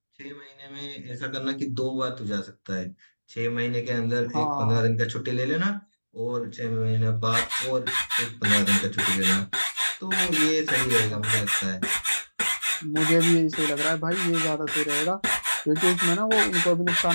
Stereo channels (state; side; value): inverted; both; correlation -1.00